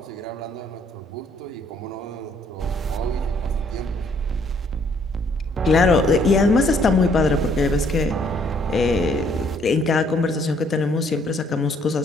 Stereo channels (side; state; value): both; normal; correlation 0.65